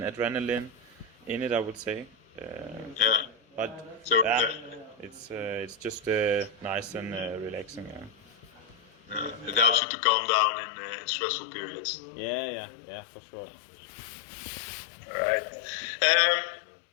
adrenaline in it, I would say. But so, it's just nice and relaxing. it helps you to calm down in stressful periods. Yeah, for sure. All right.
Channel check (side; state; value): right; drops out; at 9.8 s